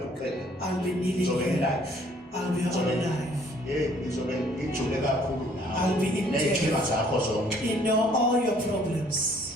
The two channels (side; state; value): both; normal; correlation 0.60